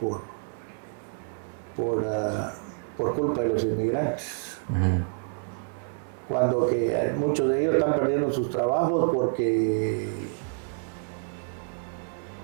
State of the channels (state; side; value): silent; left; 59 dB below the other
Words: culpa de los inmigrantes. Cuando que muchos de ellos están perdiendo sus trabajos porque